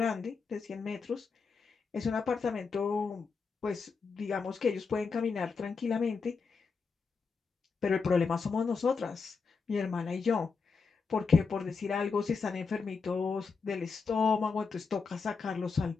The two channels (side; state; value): right; quieter; 5.0 dB